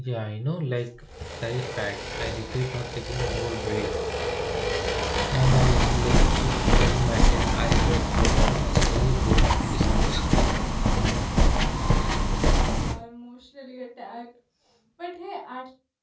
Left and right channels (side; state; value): both; identical; correlation 1.00